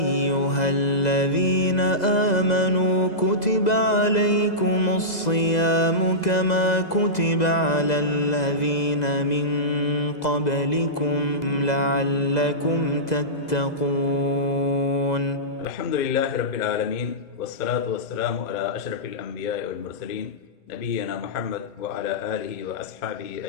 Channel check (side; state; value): right; late; 2.0 ms